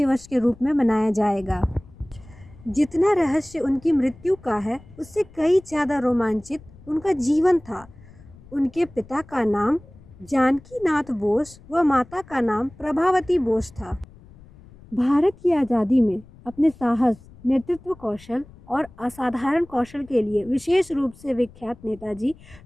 के रूप में मनाया जाएगा। जितना रहस्य उनकी मृत्यु का है, उससे कई ज़्यादा रोमांचित उनका जीवन था। उनके पिता का नाम जानकी नाथ बोस व माता का नाम प्रभावती बोस था। भारत की आज़ादी में अपने साहस, नेतृत्व कौशल और असाधारण कौशल के लिए विशेष रूप से विख्यात नेताजी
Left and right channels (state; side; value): noise; left; rumble, 22 dB below the sound